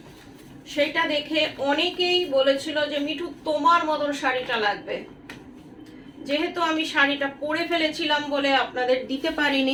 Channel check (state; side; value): identical; both; correlation 1.00